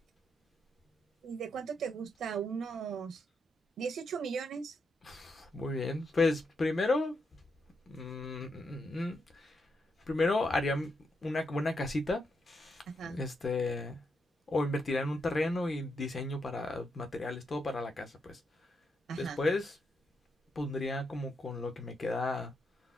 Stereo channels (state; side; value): normal; both; correlation 0.82